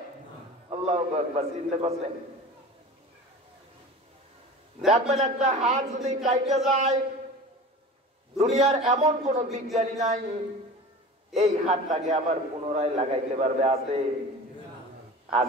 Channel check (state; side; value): normal; both; correlation 0.36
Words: আল্লাহু আকবার। চিন্তা করছেন? দেখবেন একটা হাত যদি কাইটে যায়, দুনিয়ার এমন কোন বিজ্ঞানী নাই এই হাতটাকে আবার পুনরায় লাগাইতে পারবে।